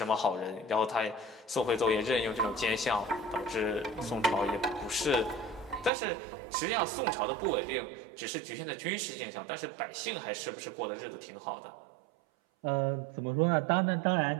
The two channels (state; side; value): drops out; left; at 5.9 s